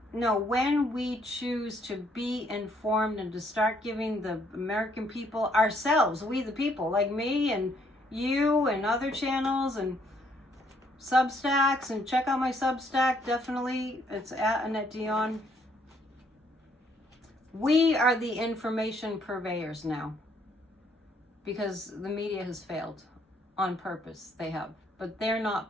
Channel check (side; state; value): both; normal; correlation 0.68